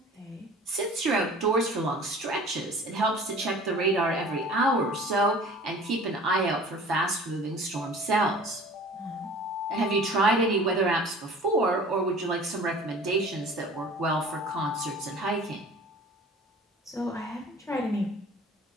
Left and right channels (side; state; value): both; normal; correlation 0.45